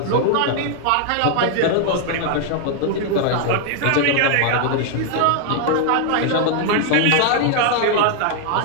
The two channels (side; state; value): both; different; correlation 0.00